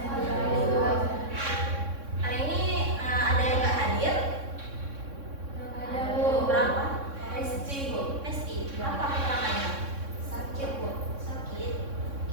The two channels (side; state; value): left; late; 3.6 ms